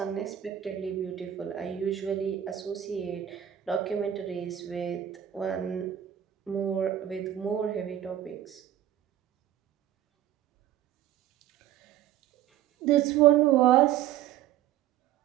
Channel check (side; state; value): left; quieter; 11.4 dB